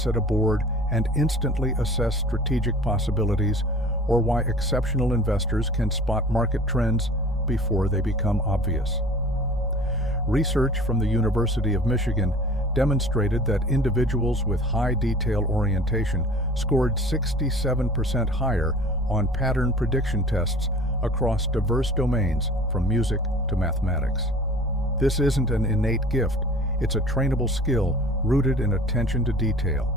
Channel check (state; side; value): normal; both; correlation 0.44